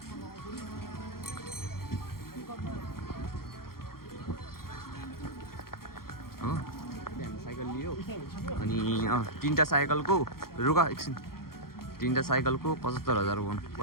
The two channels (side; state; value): right; late; 0.93 ms